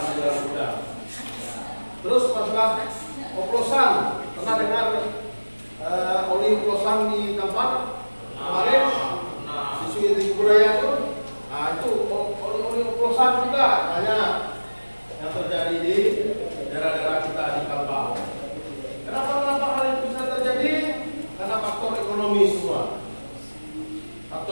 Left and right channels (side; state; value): both; inverted; correlation -1.00